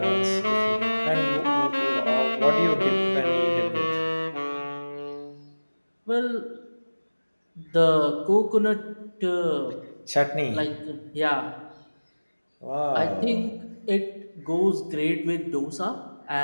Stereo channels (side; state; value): both; inverted; correlation -1.00